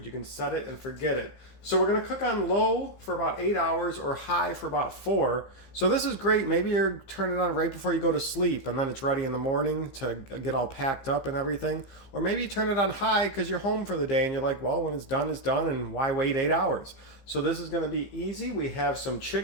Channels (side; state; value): right; late; 15 ms